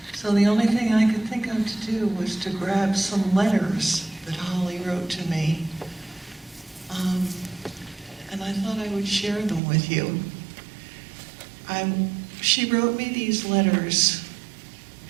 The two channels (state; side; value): drops out; left; at 9.6 s